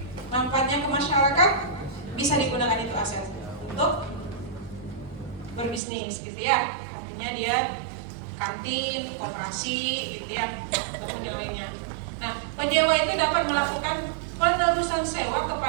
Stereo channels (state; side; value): drops out; left; at 5.8 s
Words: Manfaatnya ke masyarakat bisa digunakan itu aset untuk berbisnis gitu ya. Artinya dia kantin, koperasi gitu ya, ataupun yang lainnya. Nah, penyewa itu dapat melakukan penerusan sewa